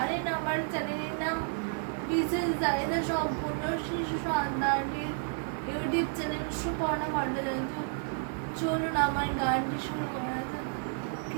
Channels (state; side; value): silent; left; 57 dB below the other